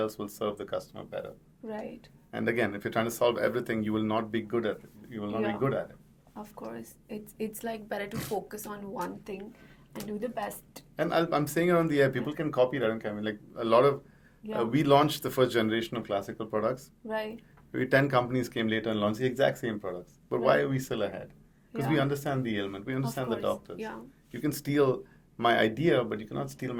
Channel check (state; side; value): identical; both; correlation 1.00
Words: will serve the customer better. Right. And again, if you're trying to solve everything, you will not be good at it. You will not Yeah. be good at it. Of course. It's like better to focus on one thing and do the best. And I'm saying it on the air. People can copy it. I don't care. I mean, like a lot of Yeah. we launched the first generation of classical products. Right. Maybe 10 companies came later and launched the exact same products. But why Right. are we still ahead? Because Yeah. we understand the ailment. We understand the course. doctors. Yeah. You can steal my idea, but you cannot steal